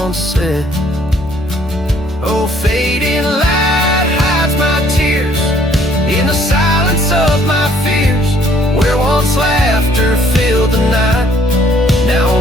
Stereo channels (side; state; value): both; normal; correlation 0.62